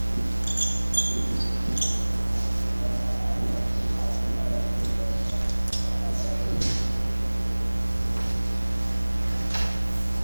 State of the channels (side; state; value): both; inverted; correlation -1.00